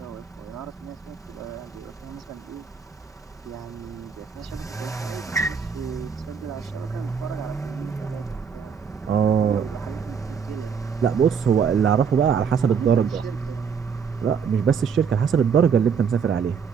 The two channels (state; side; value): quieter; left; 6.6 dB